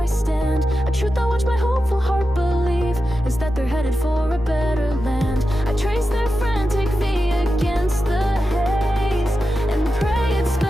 stand. A truth I watch my hopeful heart believe is that they're headed for a better land. I trace their frantic V against the haze and pray it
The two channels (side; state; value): both; normal; correlation 0.91